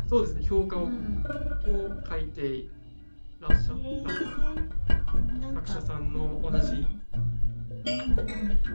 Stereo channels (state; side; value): inverted; both; correlation -1.00